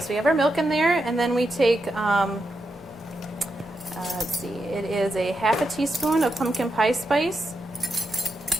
we have our milk in there, and then we take, let's see, it is a 1/2 teaspoon of pumpkin pie spice.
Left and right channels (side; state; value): both; normal; correlation 0.85